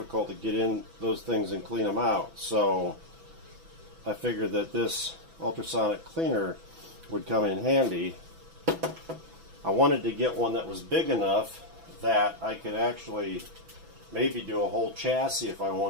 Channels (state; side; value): late; left; 6.0 ms